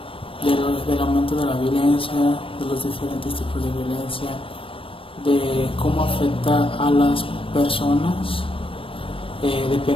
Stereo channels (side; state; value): right; late; 0.26 ms